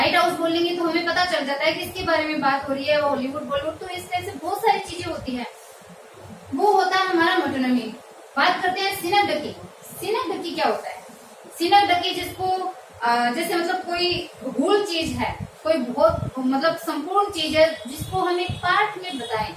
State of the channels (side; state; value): both; identical; correlation 1.00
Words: हाउस बोलेंगे तो हमें पता चल जाता है किसके बारे में बात हो रही है, हॉलीवुड बॉलीवुड, तो इस तरह से बहुत सारी चीजें होती है। वो होता है हमारा मेटोनिमी। बात करते हैं सिनोक्टिव। सिनोक्टिव क्या होता है? सिनोक्टिव जिसको जैसे मतलब कोई होल चीज है, कोई बहुत मतलब संपूर्ण चीज है जिसको हम एक पार्ट में बताएं,